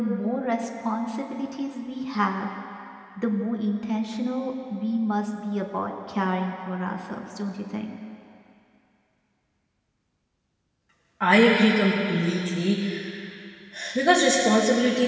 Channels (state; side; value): identical; both; correlation 1.00